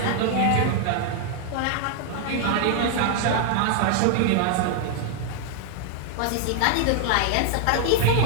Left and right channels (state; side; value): different; both; correlation 0.00